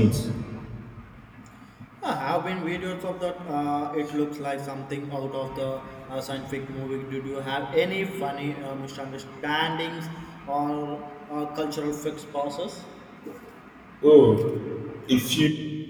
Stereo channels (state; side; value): identical; both; correlation 1.00